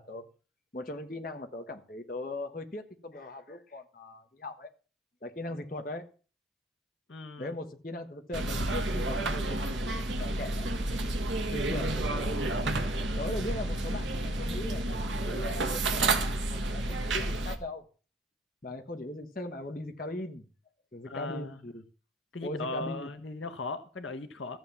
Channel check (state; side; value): normal; both; correlation 0.55